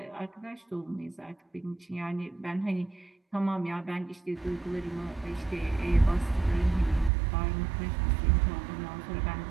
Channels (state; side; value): drops out; left; at 7.1 s